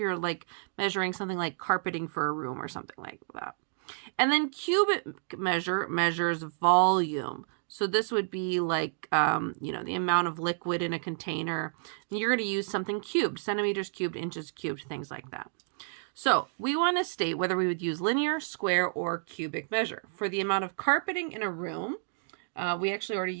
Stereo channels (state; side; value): silent; left; digital silence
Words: like measuring something like carpeting for a room or something like that. And then cubic measure measures volume. So this would be like, the amount of liquid in a container. And you're going to use something cubed, centimeters cubed, inches cubed, things like that. So we want to state whether we would use linear, square, or cubic measure. For the amount of carpeting in a room, we actually already